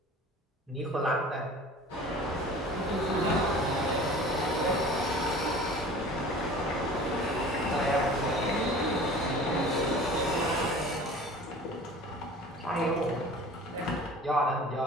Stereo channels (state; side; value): normal; both; correlation 0.42